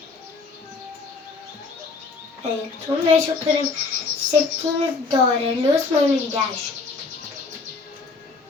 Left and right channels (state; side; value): quieter; right; 4.1 dB